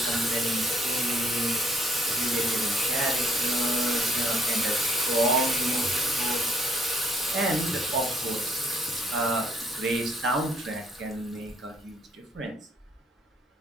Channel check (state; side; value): normal; both; correlation 0.65